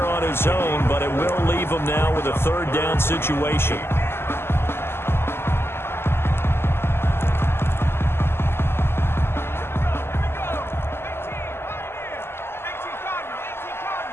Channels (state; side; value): late; right; 0.12 ms